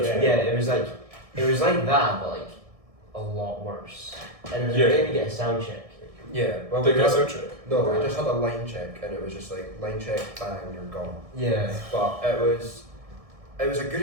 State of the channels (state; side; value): late; left; 1.6 ms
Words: Yeah, it was like that, but like a lot worse. And it was made me get a sound check. Yeah. Well, They got a sound check. No, we just had a line check, and it was just like line check, bang, you're gone. Yeah. But it was a good